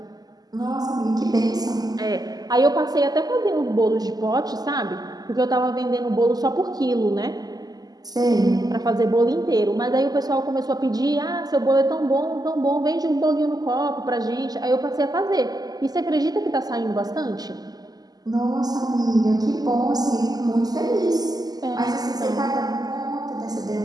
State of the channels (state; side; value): late; left; 0.19 ms